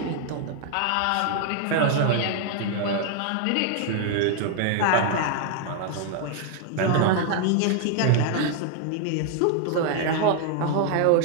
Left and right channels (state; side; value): different; both; correlation 0.00